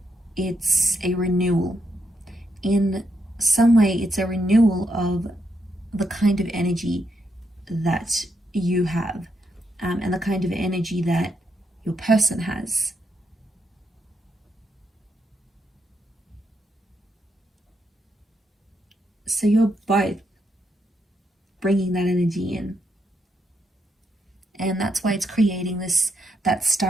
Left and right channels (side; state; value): both; normal; correlation 0.80